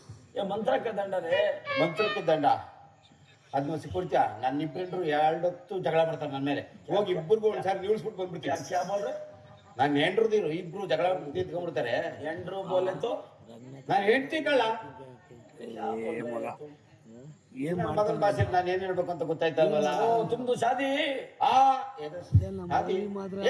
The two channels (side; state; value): both; identical; correlation 1.00